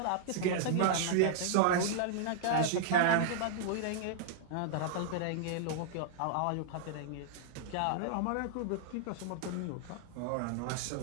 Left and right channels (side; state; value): both; different; correlation -0.01